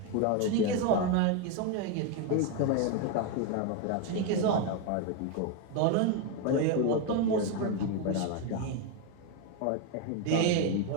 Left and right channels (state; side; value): different; both; correlation 0.02